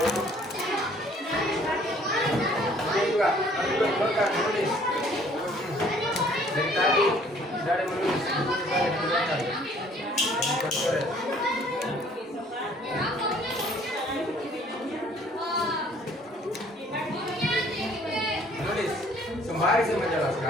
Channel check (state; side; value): normal; both; correlation 0.58